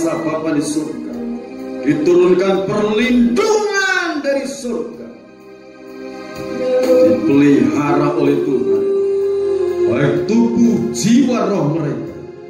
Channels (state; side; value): identical; both; correlation 1.00